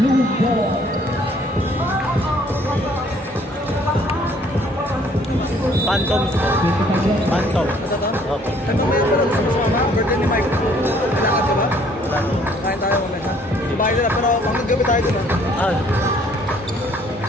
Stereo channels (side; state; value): both; normal; correlation 0.60